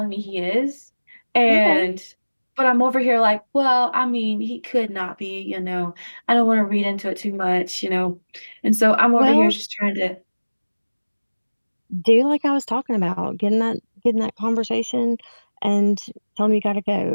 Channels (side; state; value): both; inverted; correlation -1.00